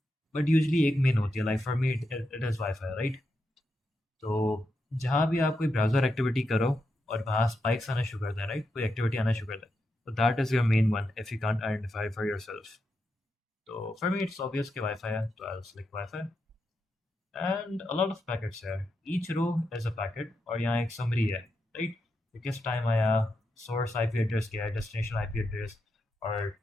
But usually एक main होती है. Like for me it is Wi-Fi, right? तो जहाँ भी आप कोई ब्राउज़र एक्टिविटी करो और वहाँ स्पाइक्स आना शुरू करते हैं, राइट? कोई एक्टिविटी आना शुरू करता है, तो that is your main one if you can't identify for yourself. तो फॉर मी इट्स ऑब्वियस कि वाईफाई है, तो I select wifi and a lot of packets है. Each row is a packet और यहाँ एक समरी है, राइट? कि किस टाइम आया, सोर्स आईपी एड्रेस क्या है, डेस्टिनेशन आईपी एड्रेस, और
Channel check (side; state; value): both; normal; correlation 0.85